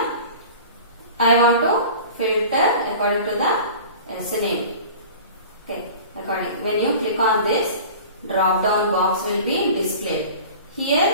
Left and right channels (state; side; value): inverted; both; correlation -0.40